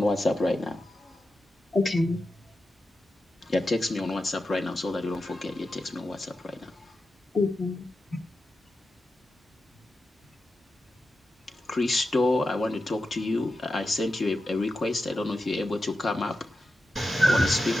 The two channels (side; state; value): both; normal; correlation 0.90